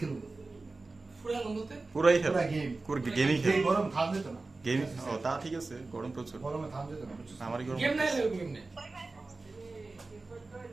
ফুরা বলতে পুরাই খেল পুরা গেম পুরো গেমই খেল গরম থাম যেত না গেম ও তা ঠিক আছে গরম প্রচুর গরমে থাম যেত না আমারই গরম গেম নাই এরকম গেম নাই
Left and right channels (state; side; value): quieter; left; 3.5 dB